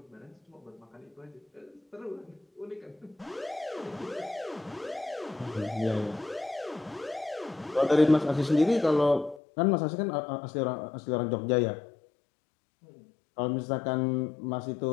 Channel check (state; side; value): drops out; right; at 9.4 s